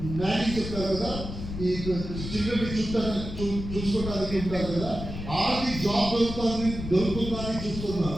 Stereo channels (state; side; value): noise; left; rumble, 7 dB below the sound